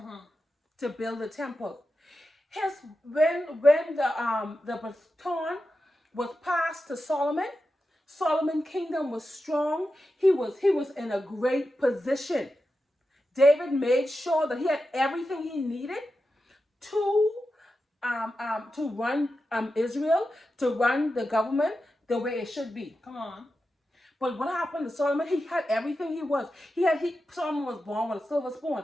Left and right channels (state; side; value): normal; both; correlation 0.90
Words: to build a temple. When the baton was passed to Solomon, Solomon's kingdom was strong. He was in a great position. David made sure that he had everything he needed to run Israel, to run the government the way it should be. Come on. But what happened to Solomon? He had everything he was. Solomon was born with a silver